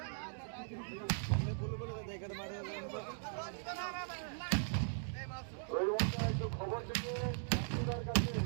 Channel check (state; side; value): silent; left; digital silence